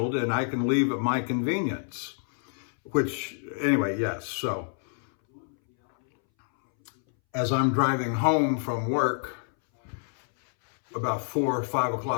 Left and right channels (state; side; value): silent; right; 60 dB below the other